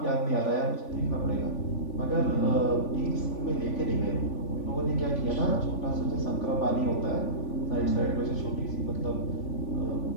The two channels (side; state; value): right; late; 3.5 ms